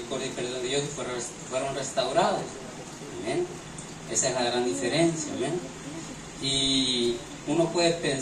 y perdón de Dios y fueron restaurados. ¿Amén? Esa es la gran diferencia. ¿Amén? Y uno puede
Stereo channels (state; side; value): identical; both; correlation 1.00